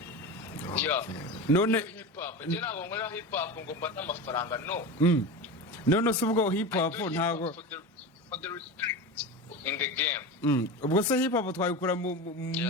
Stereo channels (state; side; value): normal; both; correlation 0.26